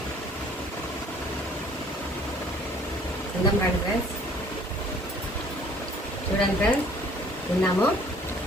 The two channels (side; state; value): both; normal; correlation 0.56